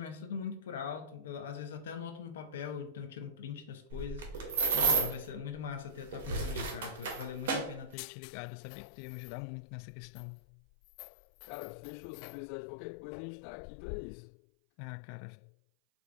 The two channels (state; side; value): drops out; right; at 8.0 s